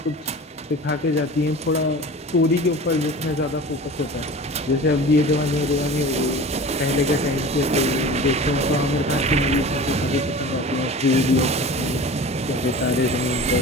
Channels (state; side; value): normal; both; correlation 0.37